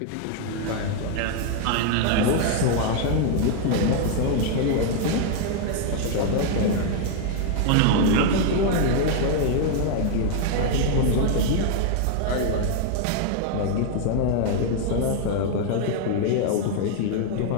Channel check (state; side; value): different; both; correlation 0.00